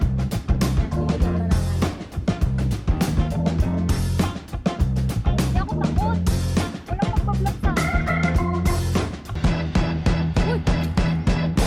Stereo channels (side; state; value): both; identical; correlation 1.00